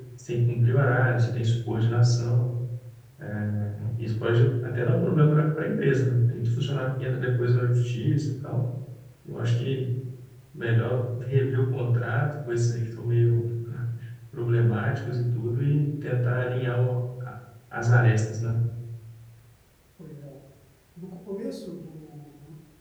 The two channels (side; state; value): both; identical; correlation 1.00